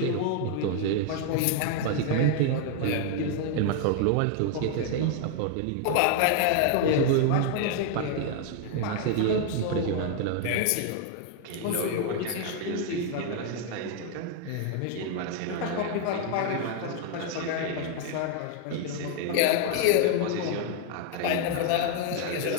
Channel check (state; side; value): different; both; correlation 0.00